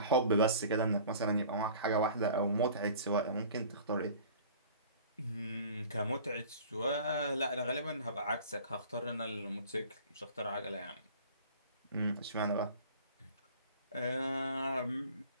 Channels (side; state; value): both; inverted; correlation -0.45